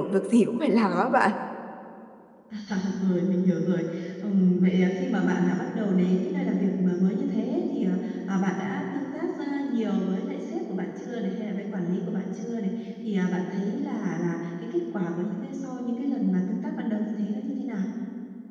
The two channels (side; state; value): both; identical; correlation 1.00